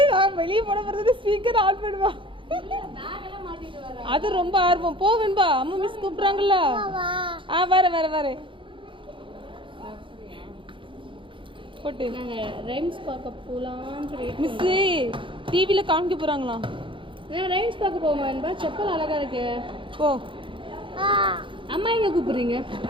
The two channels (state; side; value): late; left; 0.25 ms